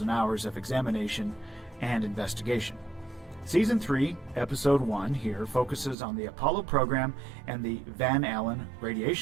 hours of examination and investigation. Season 3, Episode 1 here focuses on the Apollo program and the Van Allen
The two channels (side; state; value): left; drops out; at 6.0 s